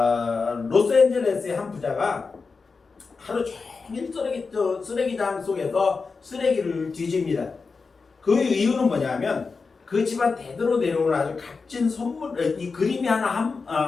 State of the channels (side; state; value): right; quieter; 4.6 dB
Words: 로스앤젤레스의 한 부자가 하루 종일 쓰레기장 속에서 쓰레기를 뒤집니다. 그 이유는 뭐냐면 그 집안 대대로 내려오는 아주 값진 선물, 이 그림이